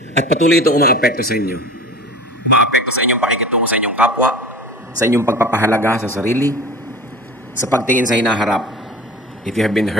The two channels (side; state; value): both; normal; correlation 0.38